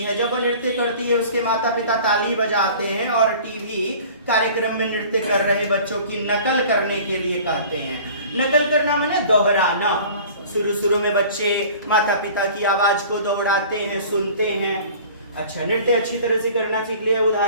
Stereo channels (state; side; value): inverted; both; correlation -0.45